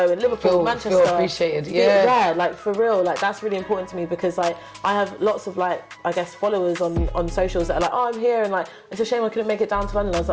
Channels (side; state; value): both; identical; correlation 1.00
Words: in Liverpool, Manchester feel appreciated. Like for real, like that's really important to me, because like I have lots of like I guess followers on socials that are like, oh, I'm here, and like it's a shame I couldn't make it down to London. I was